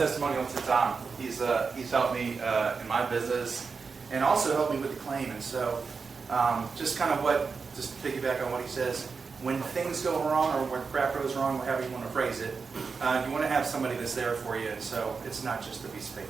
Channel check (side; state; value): left; quieter; 5.0 dB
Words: to Tom. He's helped me in my business and also helped me with the claim. And so just piggyback on what he says. When things go wrong or when crap goes wrong, however you want to phrase it, you want to have somebody that's there for you. And so it's not just a piece of